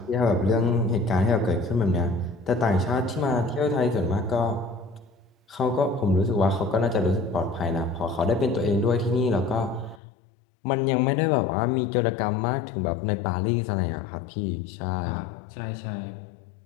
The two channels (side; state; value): right; drops out; at 10.0 s